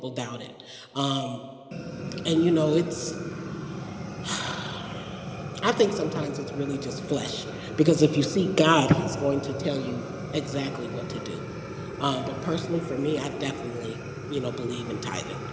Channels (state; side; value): identical; both; correlation 1.00